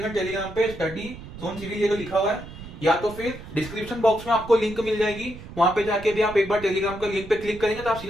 टेलीग्राम पे स्टडी जोन सिविल ये लिखा हुआ है, या तो फिर डिस्क्रिप्शन बॉक्स में आपको लिंक मिल जाएगी। वहां पे जाके भी आप एक बार टेलीग्राम का लिंक पे क्लिक करेंगे तो आप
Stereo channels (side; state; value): right; noise; rumble, 14 dB below the sound